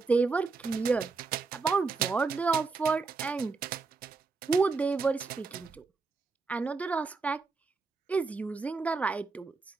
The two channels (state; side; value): quieter; left; 4.3 dB